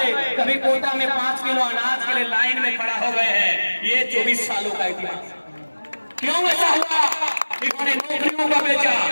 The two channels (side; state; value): both; inverted; correlation -1.00